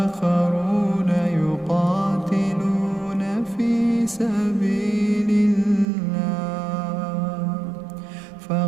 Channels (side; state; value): left; drops out; at 5.9 s